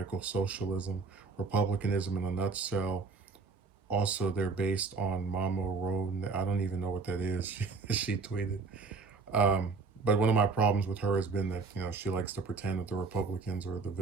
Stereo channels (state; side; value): quieter; left; 4.3 dB